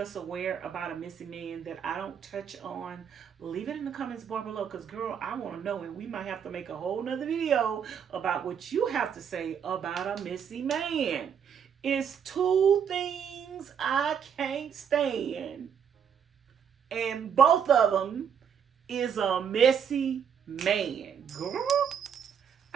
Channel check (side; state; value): left; quieter; 7.7 dB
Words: aware about a messy man that I don't touch on, leave it in the comments bar below, because girl, I want to know, and we might have to make a whole nother video about what you have to say about a messy man. It's 2 things I can't stand, and both of them is a messy man. Girl,